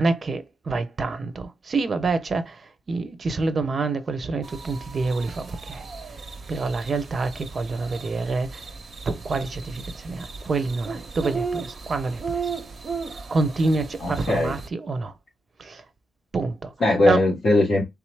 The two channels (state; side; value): normal; both; correlation 0.85